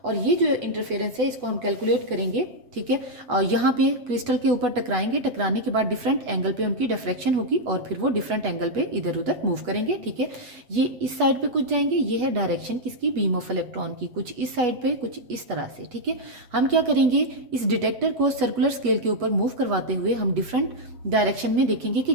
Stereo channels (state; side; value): late; left; 8.1 ms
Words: और ये जो इंटरफेरेंस है इसको हम कैलकुलेट करेंगे, ठीक है। और यहाँ पे क्रिस्टल के ऊपर टकराएंगे, टकराने के बाद डिफरेंट एंगल पे उनकी डिफ्रैक्शन होगी और फिर वो डिफरेंट एंगल पे इधर उधर मूव करेंगे, ठीक है। ये इस साइड पे कुछ जाएंगे, ये है डायरेक्शन किसकी, बीम ऑफ इलेक्ट्रॉन की, कुछ इस साइड पे कुछ इस तरह से, ठीक है। हम क्या करेंगे, इस डिटेक्टर को सर्कुलर स्केल के ऊपर मूव करवाते हुए हम डिफरेंट डायरेक्शन में देखेंगे कि